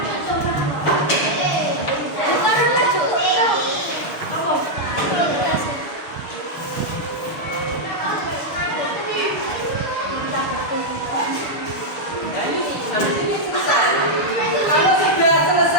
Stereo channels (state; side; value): late; right; 6.6 ms